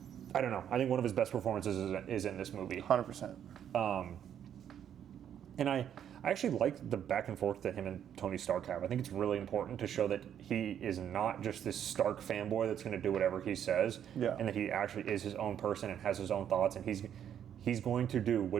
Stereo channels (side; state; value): left; quieter; 9.5 dB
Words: know. I think one of his best performances is in this movie. 100%. And I actually like the back and forth that him and Tony Stark have. I think it's really important to show that he is not just this Stark fanboy that's going to do whatever he says, and that he actually is his own person and has his own thoughts, and he's going to do